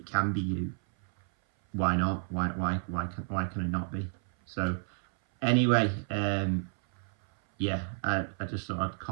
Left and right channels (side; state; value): left; silent; 57 dB below the other